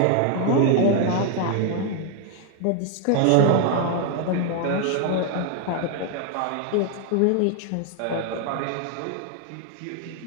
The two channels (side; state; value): both; different; correlation 0.00